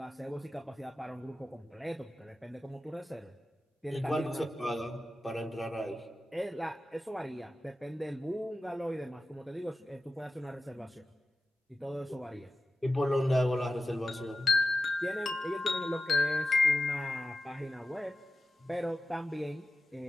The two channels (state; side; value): normal; both; correlation 0.94